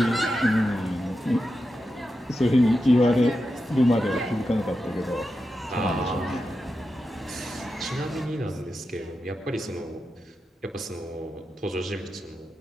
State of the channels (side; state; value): both; normal; correlation 0.89